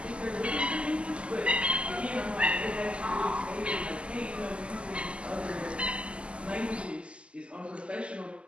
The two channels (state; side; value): late; left; 0.054 ms